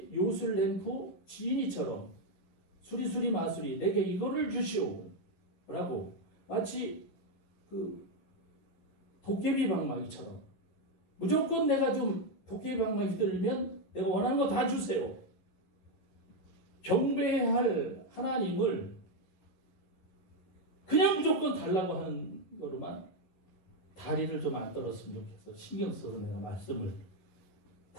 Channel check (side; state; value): right; late; 11 ms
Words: 요술램프 지인이처럼 수리수리 마수리 내게 이거를 주시오 라고 마치 그 도깨비 방망이처럼 무조건 내가 좀 도깨비 방망이 휘둘리면 내가 원하는 거 다 주세요. 경배해야 할 하나님을 그냥 무조건 달라고 하는 거로만 다리를 좀 안 떨었으면 좋겠어. 신경 써서 내가 말씀을